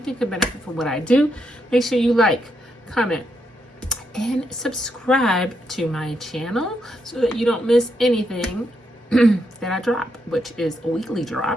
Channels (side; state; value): both; normal; correlation 0.80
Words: could benefit from what I do. Make sure you like, comment, and subscribe to my channel so that you don't miss anything that I drop, which is weekly